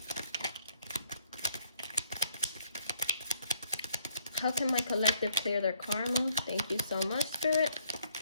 How can my collective clear their karma? Thank you so much, Spirit.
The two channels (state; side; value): inverted; both; correlation -0.70